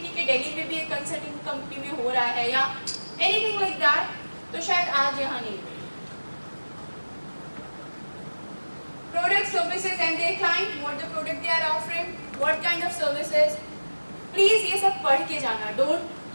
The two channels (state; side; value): inverted; both; correlation -1.00